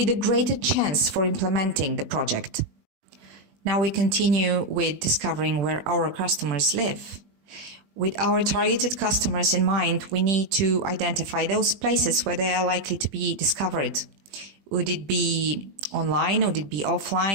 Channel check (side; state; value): left; late; 20 ms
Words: a greater chance for implementing the project. Now we continue with discovering where our customers live. With our targeted customers in mind, we need to identify those places where they are likely to be discovered. Would it be online? Would it be